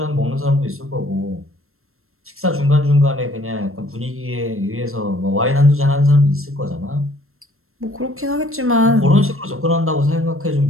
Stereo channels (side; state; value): left; late; 0.62 ms